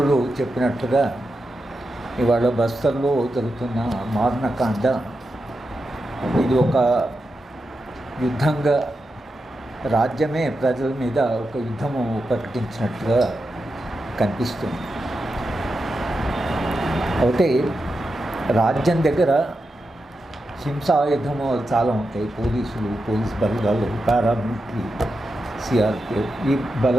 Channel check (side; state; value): both; normal; correlation 0.88